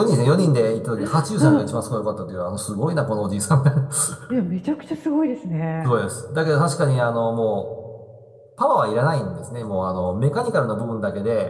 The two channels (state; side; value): identical; both; correlation 1.00